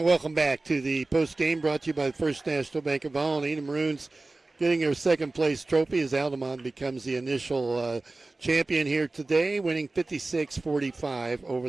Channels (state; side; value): quieter; left; 3.2 dB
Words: welcome back to the postgame brought to you by the First National Bank of Allen. The Maroons getting their second place trophy as Altamont becomes the initial champion here today, winning 56-45